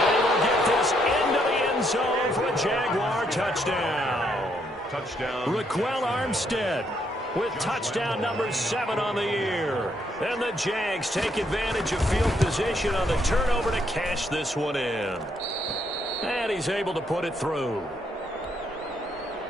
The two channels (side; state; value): both; normal; correlation 0.73